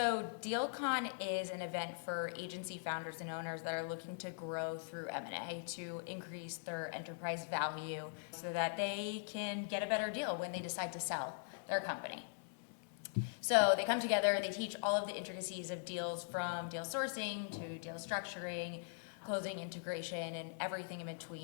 DealCon is an event for agency founders and owners that are looking to grow through M&A to increase their enterprise value so that they can get a better deal when they decide to sell their company. So they come together, they teach all of the intricacies of deals from deal sourcing to deal structuring, closing integration, and everything in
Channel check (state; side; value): silent; right; 50 dB below the other